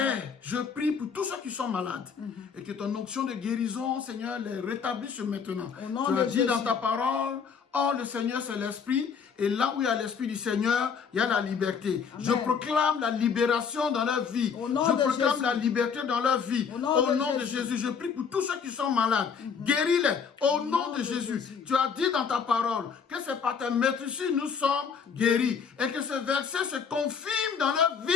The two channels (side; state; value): right; quieter; 6.4 dB